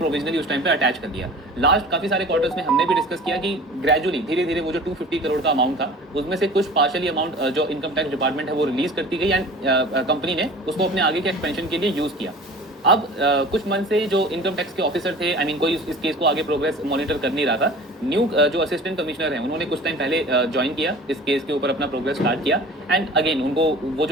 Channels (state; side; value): normal; both; correlation 0.42